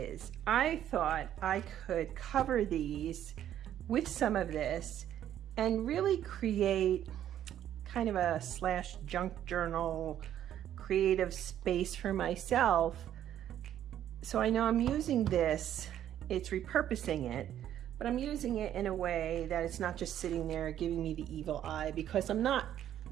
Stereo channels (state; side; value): quieter; left; 11.0 dB